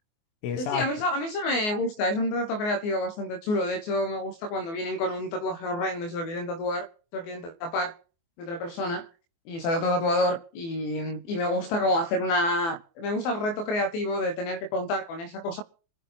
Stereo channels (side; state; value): right; late; 24 ms